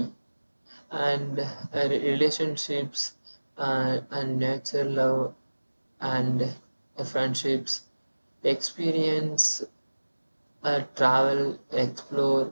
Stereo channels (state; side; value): inverted; both; correlation -1.00